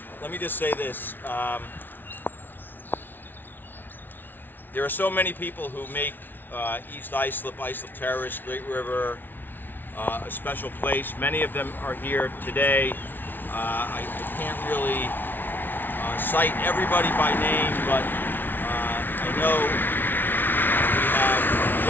let me just say this. There are so many people who make East Islip, Islip Terrace, Great River a special place. Many of them are here today. I can't really cite everybody by name, but I know we have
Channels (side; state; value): right; late; 0.093 ms